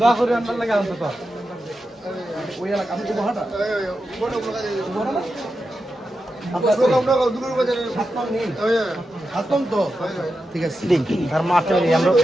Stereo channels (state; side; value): normal; both; correlation 0.89